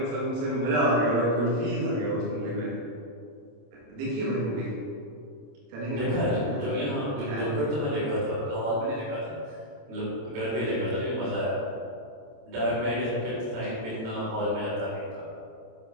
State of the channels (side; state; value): left; late; 27 ms